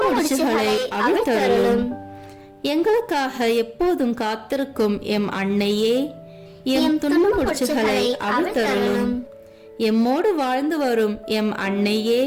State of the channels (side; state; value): both; identical; correlation 1.00